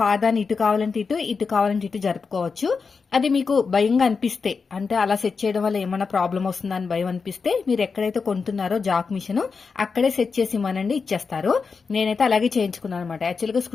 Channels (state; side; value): quieter; right; 5.0 dB